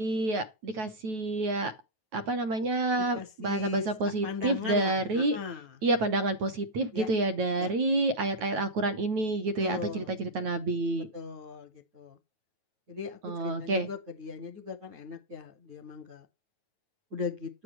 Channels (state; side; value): late; left; 9.3 ms